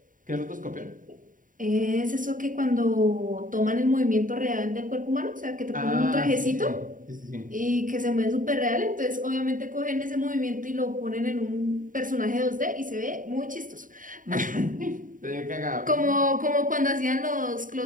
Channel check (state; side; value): late; left; 0.39 ms